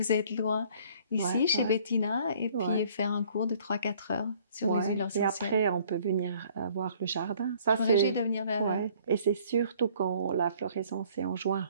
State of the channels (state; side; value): inverted; both; correlation -0.57